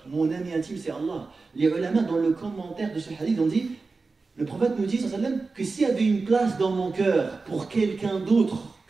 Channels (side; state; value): left; quieter; 4.0 dB